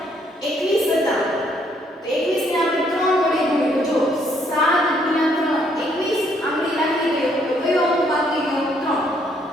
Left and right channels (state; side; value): normal; both; correlation 0.69